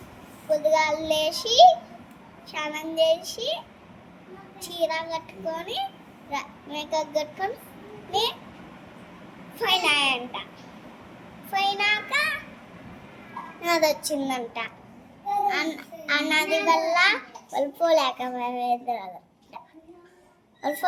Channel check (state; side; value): identical; both; correlation 1.00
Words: పొద్దుగాలు లేచి స్నానం చేసి చీర కట్టుకొని మేకప్ కట్టుకొని పోయినాయంట. పోయినాక నది వచ్చిందంట. ఆ నది వల్ల వాళ్ళు పోలేకపోయారు. వాళ్ళు